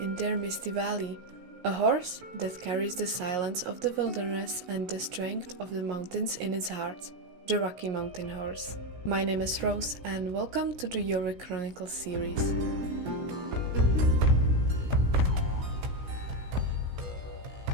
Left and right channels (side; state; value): left; late; 17 ms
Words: in their misty valley. A horse that carries the silence of the wilderness and the strength of the mountains in its heart. The Rocky Mountain Horse. My name is Rose and welcome to the JORVIK Chronicles series.